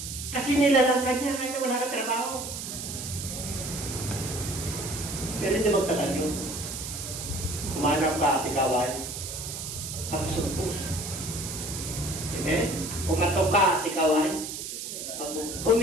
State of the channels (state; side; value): noise; right; hiss, 7 dB below the sound